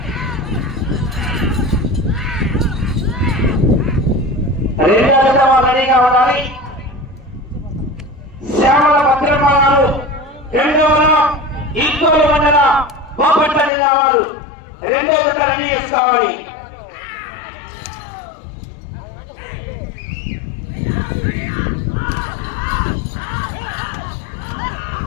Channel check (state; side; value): drops out; right; at 13.7 s